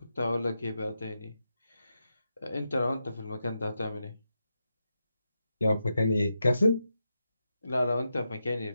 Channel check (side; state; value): both; inverted; correlation -0.87